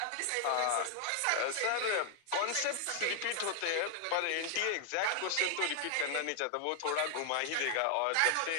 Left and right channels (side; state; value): both; different; correlation 0.00